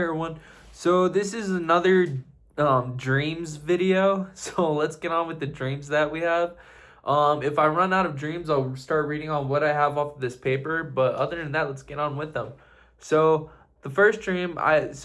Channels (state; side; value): identical; both; correlation 1.00